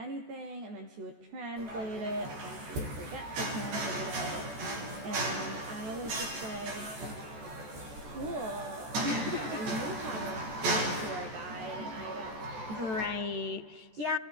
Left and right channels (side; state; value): left; late; 14 ms